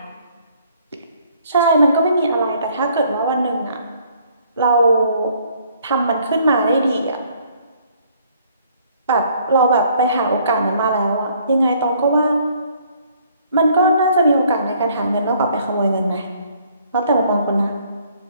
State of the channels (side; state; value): both; inverted; correlation -0.62